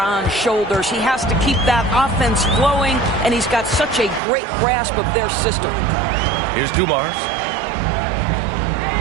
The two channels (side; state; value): left; drops out; at 4.2 s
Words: shoulders. He has to keep that offense flowing, and he's got such a great grasp of their system. Here's Dumars.